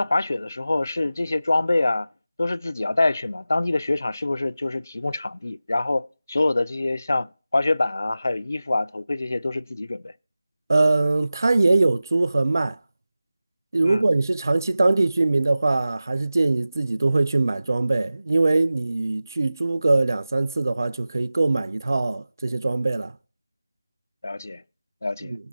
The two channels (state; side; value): inverted; both; correlation -0.95